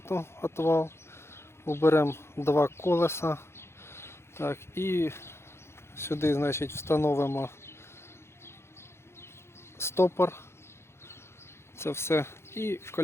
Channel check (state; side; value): late; right; 0.12 ms